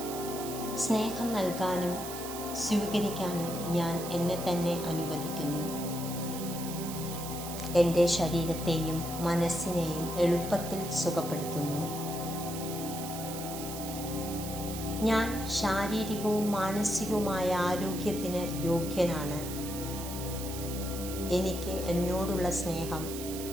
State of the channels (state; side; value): noise; right; hiss, 9 dB below the sound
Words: സ്നേഹം നൽകാനും സ്വീകരിക്കാനും ഞാൻ എന്നെ തന്നെ അനുവദിക്കുന്നു. എൻ്റെ ശരീരത്തെയും മനസ്സിനെയും എളുപ്പത്തിൽ സുഖപ്പെടുത്തുന്നു. ഞാൻ ശാരീരികവും മാനസികവുമായ ആരോഗ്യത്തിന് യോഗ്യനാണ്. എനിക്ക് എന്നോടുള്ള സ്നേഹം